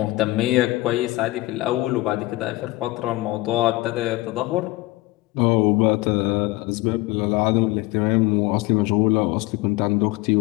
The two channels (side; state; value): right; quieter; 20.2 dB